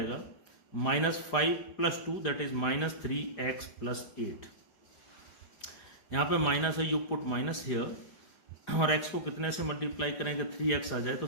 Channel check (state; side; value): late; right; 4.9 ms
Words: minus 5 plus 2 that is minus 3x plus 8। यहाँ पे माइनस है, यू पुट माइनस हियर, और x को कितने से मल्टीप्लाई करेंगे 3x आ जाए तो